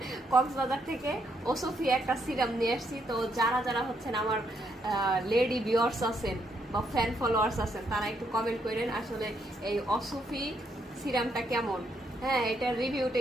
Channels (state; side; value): normal; both; correlation 0.75